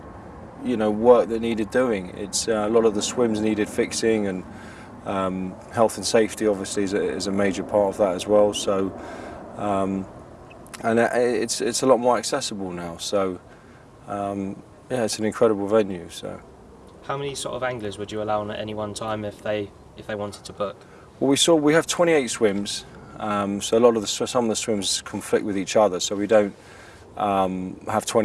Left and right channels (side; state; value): both; identical; correlation 1.00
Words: work that needed doing. It's a lot of the swims needed fixing, and health and safety obviously is a major part of that as well. So, and it's a lot more accessible now. So, yeah, it's an incredible venue. So, how many sort of anglers would you allow on at any one time if they wanted to book? Well, we have 28 swims. So a lot of some of the swims conflict with each other. So we don't have